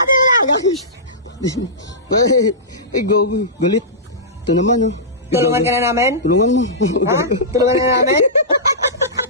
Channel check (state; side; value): normal; both; correlation -0.18